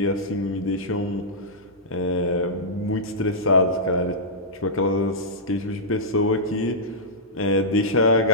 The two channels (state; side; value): normal; both; correlation -0.13